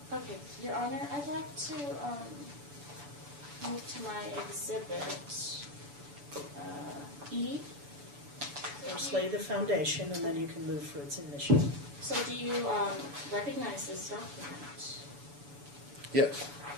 Okay, Your Honor, I'd like to move to my exhibit E. First lay the foundation and then you can move for its admission. So do you recognize this document? Yes.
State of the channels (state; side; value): late; left; 7.0 ms